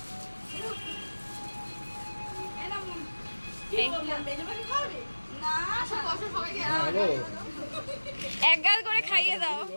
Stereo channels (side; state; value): both; inverted; correlation -1.00